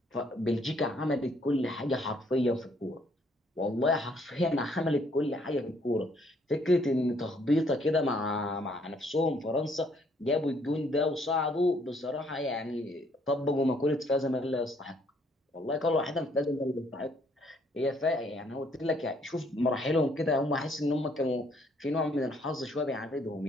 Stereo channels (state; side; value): normal; both; correlation 0.66